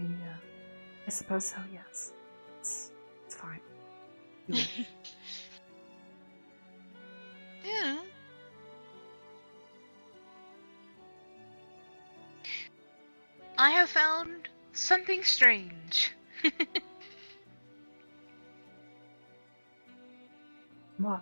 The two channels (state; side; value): inverted; both; correlation -1.00